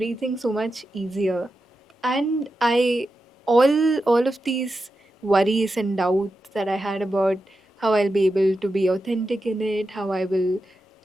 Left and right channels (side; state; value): both; normal; correlation 0.89